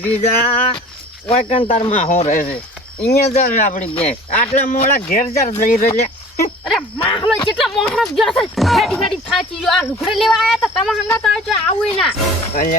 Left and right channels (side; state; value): both; normal; correlation 0.45